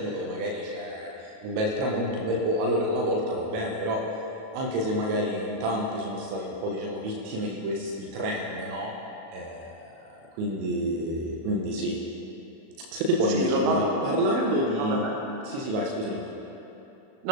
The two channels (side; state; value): left; late; 37 ms